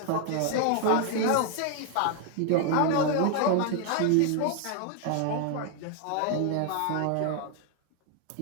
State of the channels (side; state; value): both; different; correlation 0.00